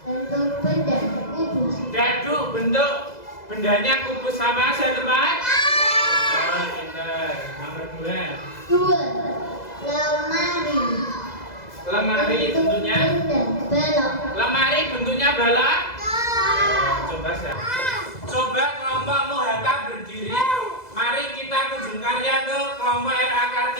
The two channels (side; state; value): right; late; 2.0 ms